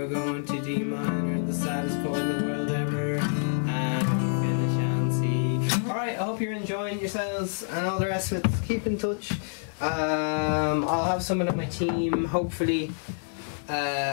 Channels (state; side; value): silent; right; digital silence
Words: going to D minor, the saddest chord in the world ever, and finish on C. Alright, I hope you're enjoying yourselves and all the rest of it. Keep in touch. I'll have someone on my team hopefully